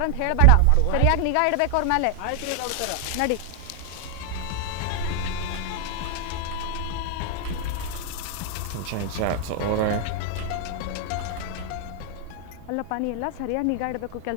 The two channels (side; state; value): both; different; correlation 0.00